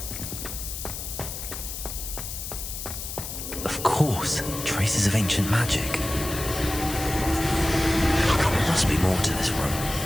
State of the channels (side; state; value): left; noise; hiss, 7 dB below the sound